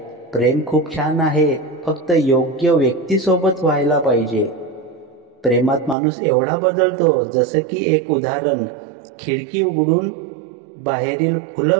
प्रेम खूप छान आहे, फक्त योग्य व्यक्तीसोबत व्हायला पाहिजे. प्रेमात माणूस एवढा बदलतो, जसं की एक उदाहरण. खिडकी उघडून बाहेरील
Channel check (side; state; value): left; drops out; at 6.0 s